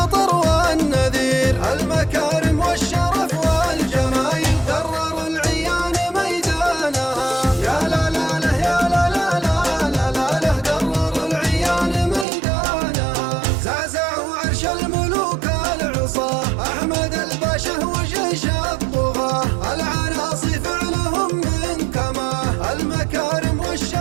والنذير. المكارم والشرف والجمايل درر العيان ميدانها. يا لا لا له يا لا لا لا لا لا له درر العيان ميدانها. زعزعوا عرش الملوك العصاه أحمد الباشا وجيش الطغاه. العناصي فعلهم من كماه. المكارم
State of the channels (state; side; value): drops out; left; at 12.2 s